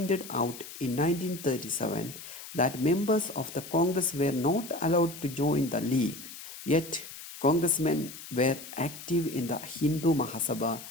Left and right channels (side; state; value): left; noise; hiss, 13 dB below the sound